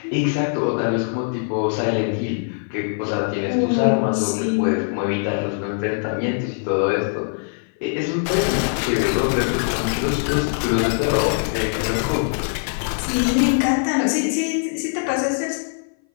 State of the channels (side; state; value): right; silent; 58 dB below the other